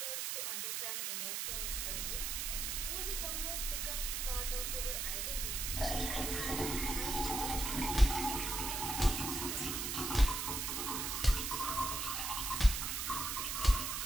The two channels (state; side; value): noise; right; hiss, 1 dB below the sound